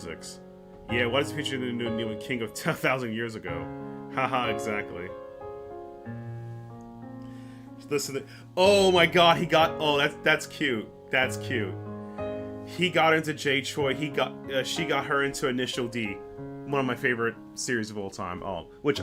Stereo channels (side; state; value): both; identical; correlation 1.00